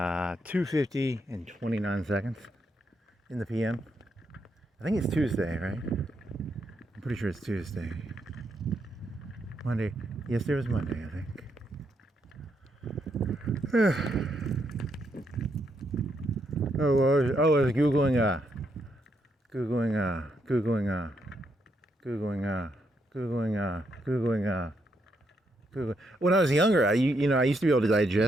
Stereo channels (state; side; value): normal; both; correlation 0.78